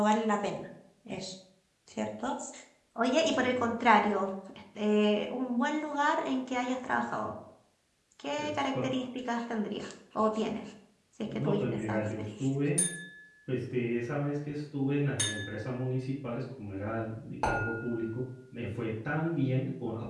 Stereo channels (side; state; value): both; identical; correlation 1.00